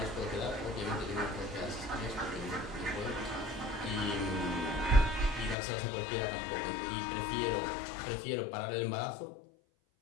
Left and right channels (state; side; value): drops out; right; at 5.6 s